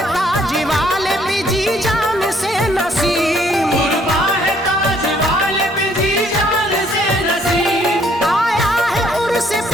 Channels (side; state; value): both; normal; correlation 0.65